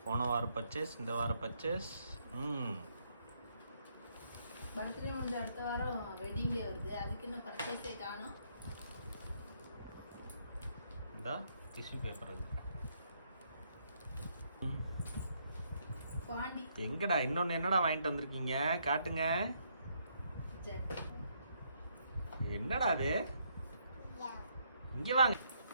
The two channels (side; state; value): both; inverted; correlation -0.73